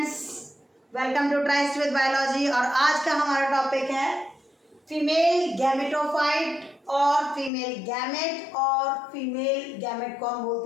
welcome to Tryst with Biology. और आज का हमारा टॉपिक है फीमेल गैमेटोफाइट और फीमेल गैमेट। और फीमेल गैमेट को हम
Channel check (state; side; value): drops out; right; at 7.5 s